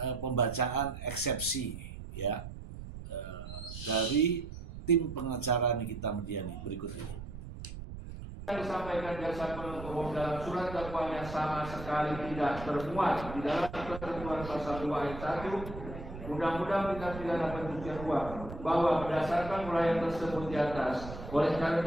pembacaan eksepsi ya dari tim pengacara Nikita Mirzani berikut ini. Yang disampaikan jaksa penuntut umum dalam surat dakwaan yang sama sekali tidak termuat di dalam ketentuan pasal 2 ayat 1 Undang-Undang Tindak Pidana Pencucian Uang, bahwa berdasarkan uraian tersebut di atas, oleh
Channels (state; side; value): noise; right; rumble, 11 dB below the sound